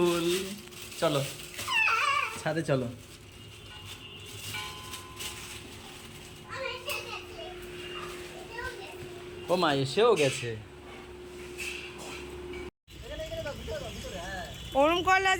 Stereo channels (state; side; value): identical; both; correlation 1.00